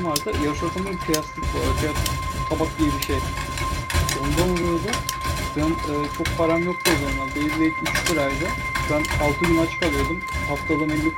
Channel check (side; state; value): both; identical; correlation 1.00